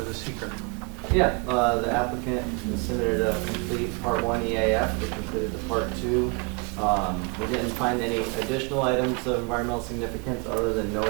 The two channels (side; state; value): left; quieter; 32.4 dB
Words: the seeker? Yeah, the applicant submitted a complete part 1 EAF, which included the part 2. We didn't find any additional items of environmental significance other than